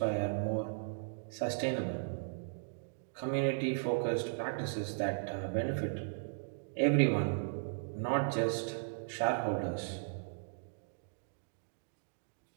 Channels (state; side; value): silent; left; digital silence